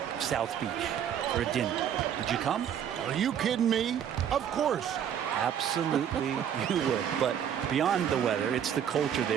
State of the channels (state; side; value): quieter; left; 9.1 dB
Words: South Beach for a dinner, would you come? Are you kidding me? Of course. Absolutely you would. But beyond the weather, it's the culture